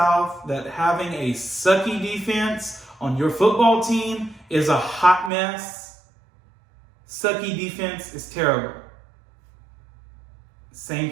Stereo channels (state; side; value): drops out; left; at 5.3 s